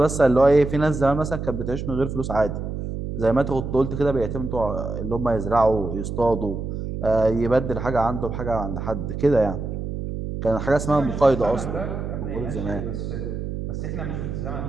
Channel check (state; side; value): noise; right; hum, 5 dB below the sound